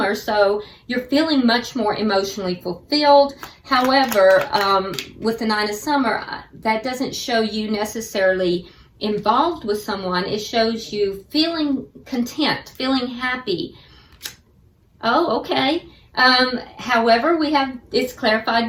so you're feeling much more emotionally fulfilled. However, with the 9 of Summer, that doesn't show you necessarily involved with someone. It shows you feeling content, feeling happy. Oh, okay. However, it's clarified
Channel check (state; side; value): identical; both; correlation 1.00